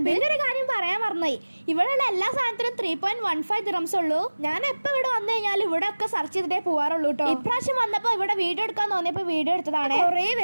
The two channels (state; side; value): inverted; both; correlation -1.00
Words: പിന്നെ ഒരു കാര്യം പറയാൻ മറന്നുപോയി, ഇവിടെയുള്ള എല്ലാ സാധനത്തിനും 3.15 ദിറംസ് ഉള്ളൂ. ഞാൻ എപ്പോ ഇവിടെ വന്നു കഴിഞ്ഞാൽ ഇവിടെ ഒക്കെ സെർച്ച് ചെയ്തിട്ടേ പോവാറുള്ളൂ കേട്ടോ. ഇപ്രാവശ്യം വന്നപ്പോ ഇവിടെ വീഡിയോ എടുക്കാൻ തോന്നിയപ്പോ വീഡിയോ എടുത്തതാണ്. കുറെ